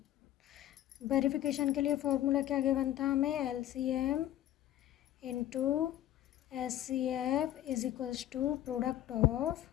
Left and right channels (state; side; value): quieter; right; 12.8 dB